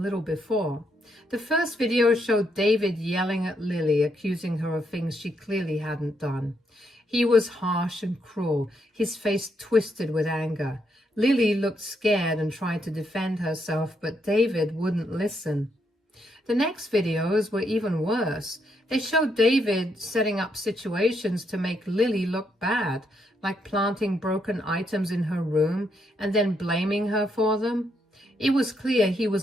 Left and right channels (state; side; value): normal; both; correlation 0.77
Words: before. The first video showed David yelling at Lily, accusing her of things she clearly hadn't done. He was harsh and cruel, his face twisted with anger. Lily looked scared and tried to defend herself, but David wouldn't listen. The next videos were even worse. They showed David setting up situations to make Lily look bad, like planting broken items in her room and then blaming her for them. It was clear he